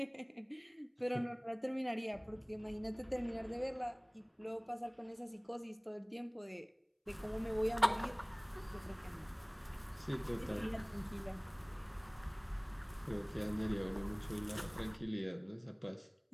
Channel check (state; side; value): identical; both; correlation 1.00